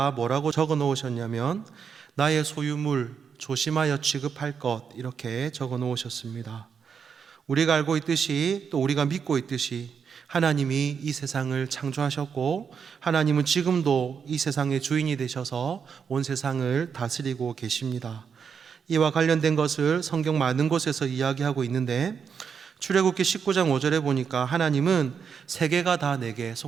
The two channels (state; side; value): quieter; left; 6.7 dB